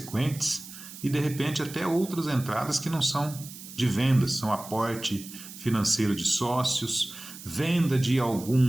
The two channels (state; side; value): noise; right; hiss, 14 dB below the sound